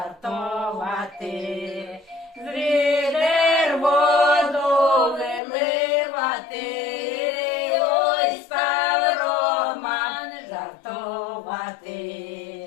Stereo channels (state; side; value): drops out; right; at 5.4 s